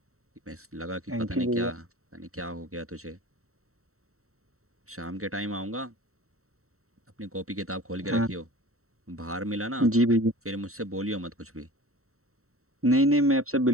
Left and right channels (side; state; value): left; late; 0.64 ms